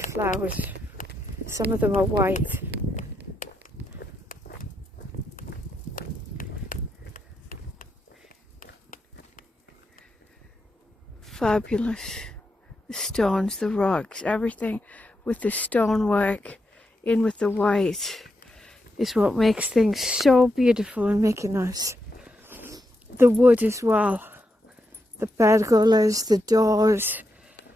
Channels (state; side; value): normal; both; correlation 0.84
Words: Some of them are white. Fabulous. The stones, the rocks, everything with the stonework in with the white is what makes things so beautiful in Mykonos. The wood as well, the pergolas, the doors,